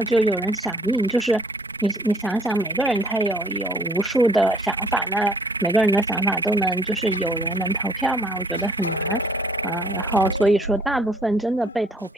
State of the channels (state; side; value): normal; both; correlation 0.60